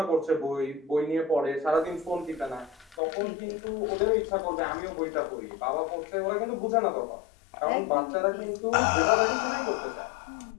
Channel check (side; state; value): right; drops out; at 3.0 s